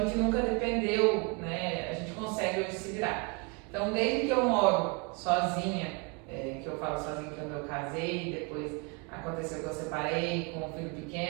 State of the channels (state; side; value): quieter; left; 31.2 dB